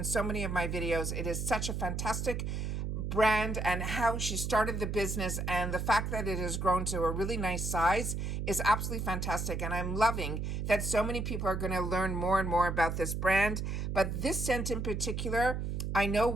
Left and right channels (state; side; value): noise; right; hum, 2 dB below the sound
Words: so many of my videos. It is such a fantastic brand, and how she started the business and the fact that it has grown to a really nice size is absolutely fantastic. And I'm loving that so many people are going to learn more and more about this brand. But this scent in particular, I know